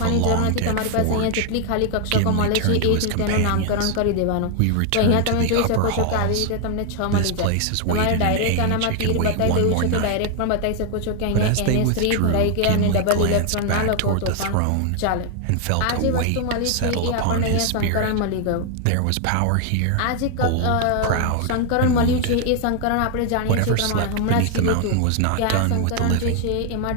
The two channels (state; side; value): different; both; correlation 0.00